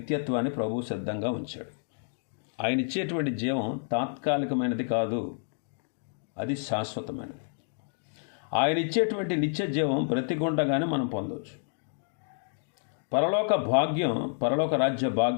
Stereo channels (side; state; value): right; silent; digital silence